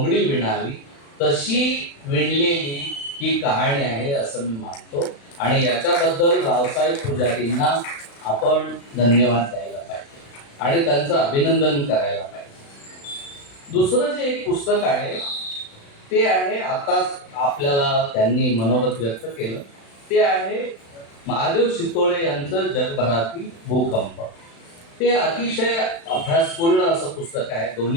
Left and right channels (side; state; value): right; late; 36 ms